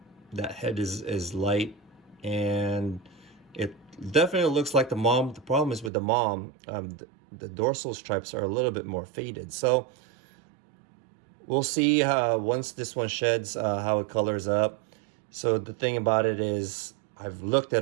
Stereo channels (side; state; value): left; drops out; at 5.9 s